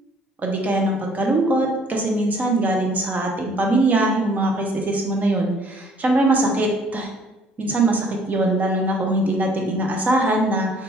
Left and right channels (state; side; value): normal; both; correlation 0.59